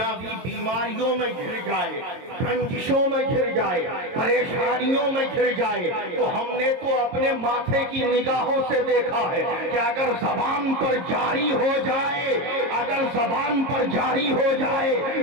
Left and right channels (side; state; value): left; late; 22 ms